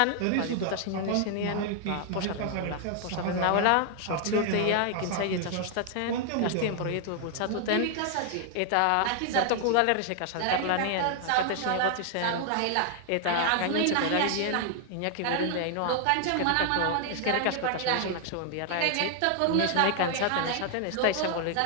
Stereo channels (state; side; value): different; both; correlation 0.00